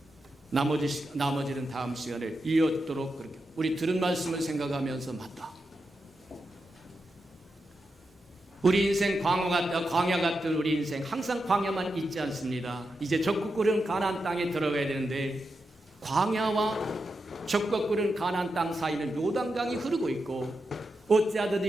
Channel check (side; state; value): both; normal; correlation 0.87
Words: 나머지는 다음 시간에 이어도록 그렇게 우리 들은 말씀을 생각하면서 맞다. 우리 인생 광야 같은 우리 인생 항상 광야만 있지 않습니다. 이제 적국 꾸는 가나안 땅에 들어가야 되는데 광야와 적국 꾸는 가나안 땅 사이는 요단강이 흐르고 있고 어찌하든지